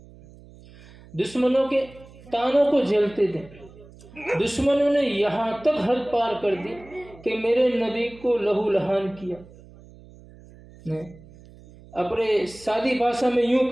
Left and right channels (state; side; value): noise; right; hum, 22 dB below the sound